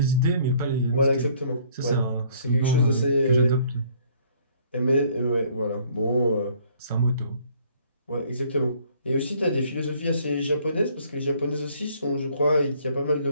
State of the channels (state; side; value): inverted; both; correlation -0.60